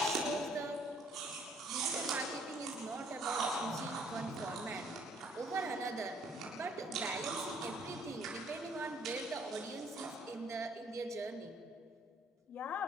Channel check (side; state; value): both; normal; correlation 0.62